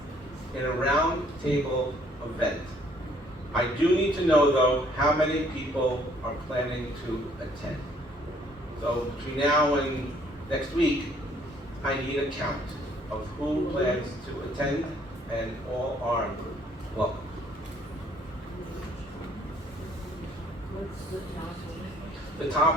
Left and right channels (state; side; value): normal; both; correlation 0.62